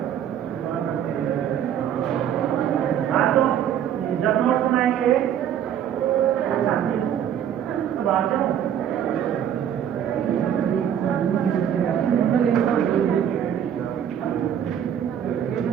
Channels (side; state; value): left; quieter; 9.5 dB